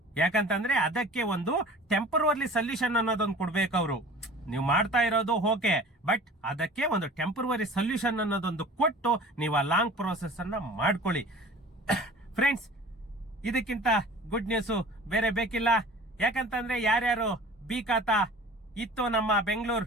ಯಾಕಂತಂದ್ರೆ ಅದಕ್ಕೆ ಒಂದು ಟೆಂಪರರಿ ಸೊಲ್ಯೂಷನ್ ಅನ್ನೋದೊಂದು ಕೊಡ್ಬೇಕು ಅವರು. ನೀವು ಮಾಡ್ತಾ ಇರೋದು ಓಕೆ, ಬಟ್ ಅದಕ್ಕೆ ಒಂದು ಟೆಂಪರರಿ ಸೊಲ್ಯೂಷನ್ ಅನ್ನೋದೊಂದು ಕೊಟ್ಟು ನೀವು ಆ ಲಾಂಗ್ ಪ್ರೋಸೆಸ್ ಅನ್ನ ಮಾಡ್ಕೊಳ್ಳಿ. ಫ್ರೆಂಡ್ಸ್, ಇದಕ್ಕಿಂತ ಗುಡ್ ನ್ಯೂಸ್ ಬೇರೆ ಬೇಕಿಲ್ಲ. ಯಾಕಂತಂದ್ರೆ ಯಾರ್ಯಾರು ಬಿ ಖಾತಾ ಇತ್ತು ನಮ್ಮ ಬೆಂಗಳೂರು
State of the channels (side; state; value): both; normal; correlation 0.43